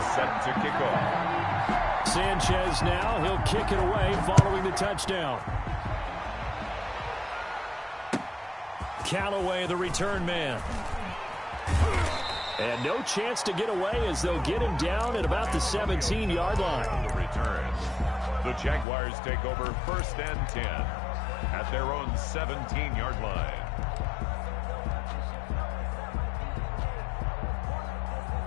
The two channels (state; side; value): drops out; right; at 18.9 s